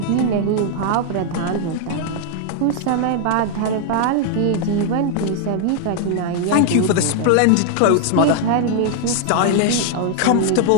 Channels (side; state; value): both; different; correlation 0.00